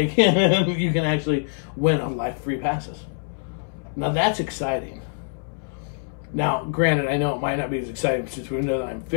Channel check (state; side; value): silent; right; 62 dB below the other